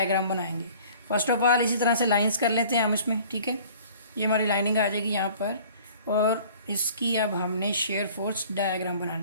बनाएंगे। फर्स्ट ऑफ ऑल इसी तरह से लाइंस कर लेते हैं हम इसमें। ठीक है, ये हमारी लाइनिंग आ जाएगी यहाँ पर, और इसकी अब हमने शेयर फोर्स डायग्राम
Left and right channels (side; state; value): both; inverted; correlation -0.50